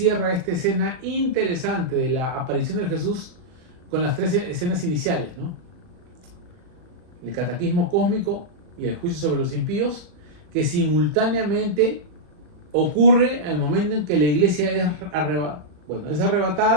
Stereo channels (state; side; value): late; left; 39 ms